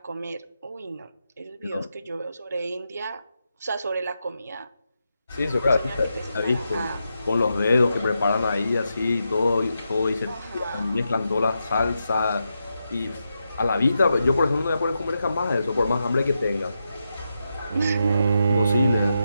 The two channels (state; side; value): inverted; both; correlation -0.86